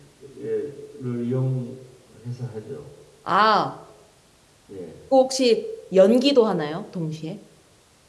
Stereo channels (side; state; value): both; identical; correlation 1.00